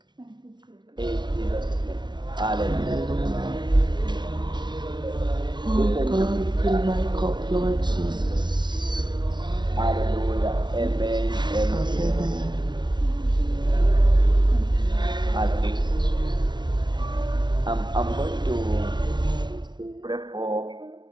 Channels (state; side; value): late; left; 0.21 ms